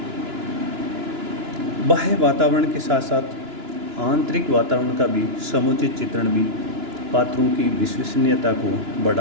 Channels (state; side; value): late; left; 2.9 ms